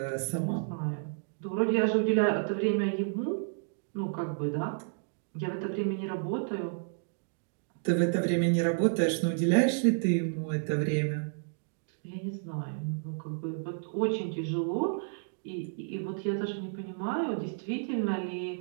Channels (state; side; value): silent; left; digital silence